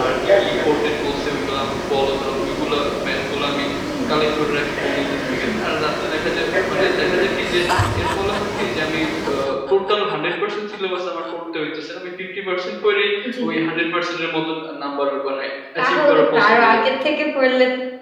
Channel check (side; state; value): both; identical; correlation 1.00